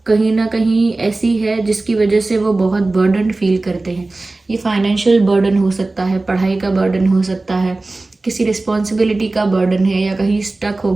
कहीं ना कहीं ऐसी है जिसकी वजह से वो बहुत बर्डन फील करते हैं। ये फाइनेंशियल बर्डन हो सकता है, पढ़ाई का बर्डन हो सकता है, किसी रिस्पॉन्सिबिलिटी का बर्डन है, या कहीं स्टक हो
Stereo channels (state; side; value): quieter; left; 3.2 dB